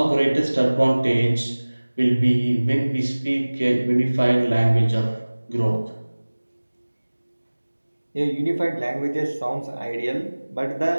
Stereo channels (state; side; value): inverted; both; correlation -1.00